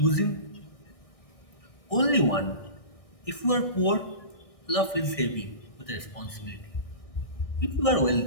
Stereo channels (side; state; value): right; late; 1.6 ms